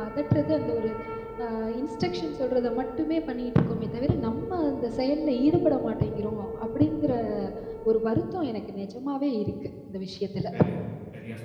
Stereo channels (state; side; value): identical; both; correlation 1.00